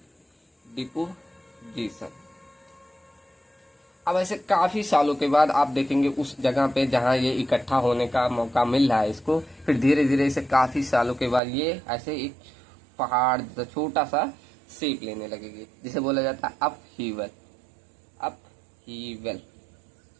डिपोजिशन। अब ऐसे काफी सालों के बाद आप देखेंगे उस जगह पे जहाँ ये इकट्ठा होने का मौका मिल रहा है इसको, फिर धीरे धीरे इसे काफी सालों के बाद ये ऐसे एक पहाड़ जैसा छोटा सा शेप लेने लगेगी, जिसे बोला जाता है अपहीवल। अपहीवल,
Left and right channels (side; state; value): left; drops out; at 11.4 s